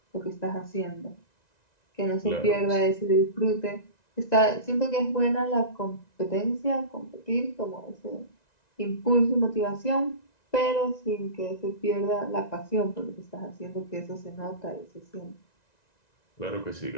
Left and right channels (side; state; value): right; late; 1.9 ms